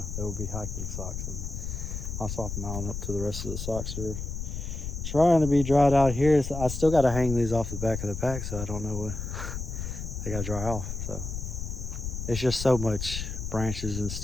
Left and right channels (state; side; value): noise; left; rumble, 5 dB below the sound